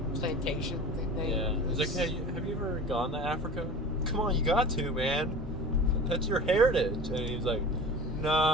plantation thing. yeah. He's like, hey, have you ever gone to Africa? Come on, you got to, man. That's your heritage. And he's like,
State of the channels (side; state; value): both; normal; correlation 0.36